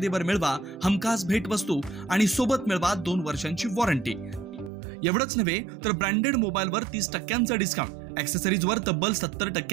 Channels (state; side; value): drops out; left; at 4.7 s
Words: मिळवा हमखास भेटवस्तू आणि सोबत मिळवा 2 वर्षांची वॉरंटी। एवढंच नव्हे तर ब्रँडेड मोबाईलवर 30% डिस्काउंट, ॲक्सेसरीजवर तब्बल